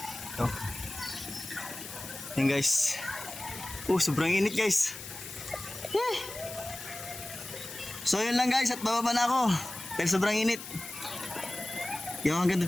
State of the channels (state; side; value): noise; left; hiss, 11 dB below the sound